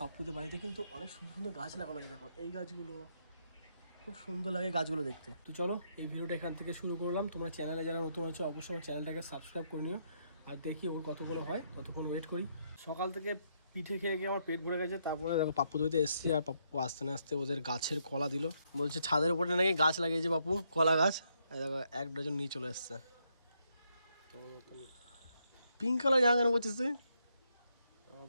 পাপ্পুদের বাড়িতে কিন্তু অনেক সুন্দর সুন্দর গাছ লাগানো আছে, দেখো এই গাছগুলো খুব সুন্দর লাগে গাছগুলো দেখতে। তো চলো এই ভিডিওটা এখান থেকে শুরু করলাম। তোমরা চ্যানেলে যারা নতুন হচ্ছে অবশ্যই আমার চ্যানেলটাকে সাবস্ক্রাইব করে নিও। আর দেখি ওর কতগুলো হয়, ততক্ষণ ওয়েট করি। সকাল থেকে পিঠে খেয়ে গিয়ে আমার পেট ভরে গেছে। তারপরে দেখো পাপ্পু দইতে এসেছি, আর পাপ্পু আসতে না আসতে ওদের গাছের কলা দিল। বলছে ছাদের উপরে নাকি গাছ লাগিয়েছে পাপ্পু, কলা গাছ। দেখো 1 ডজন নিয়ে চলে এসছে। পিঙ্ক কালার জামা কেন বলছিস তুই?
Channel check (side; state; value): both; inverted; correlation -0.76